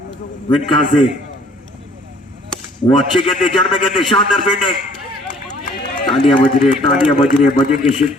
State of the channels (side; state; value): both; normal; correlation 0.57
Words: विनका से, वो अच्छी गेंद जड़ में गेंद, शानदार फील्डिंग, तालियां बज रही है, तालियां बज रही है, बजेंगे